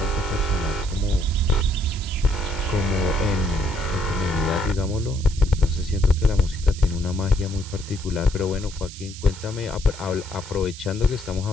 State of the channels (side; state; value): right; noise; hiss, 15 dB below the sound